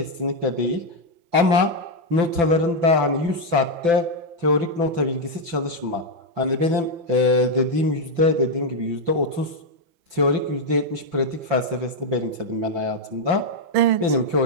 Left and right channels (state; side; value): late; left; 5.9 ms